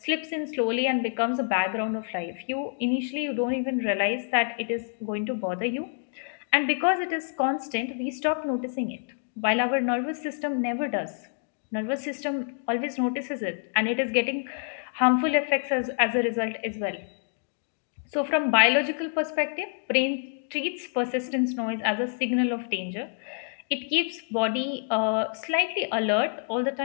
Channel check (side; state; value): right; silent; digital silence